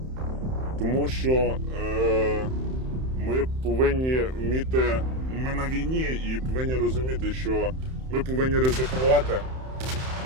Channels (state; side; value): late; left; 31 ms